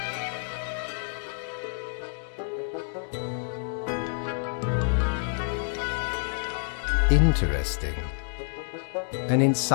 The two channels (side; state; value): right; silent; digital silence